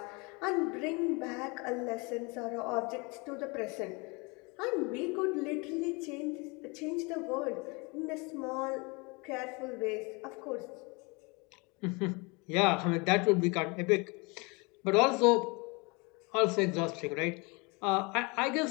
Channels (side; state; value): right; quieter; 28.6 dB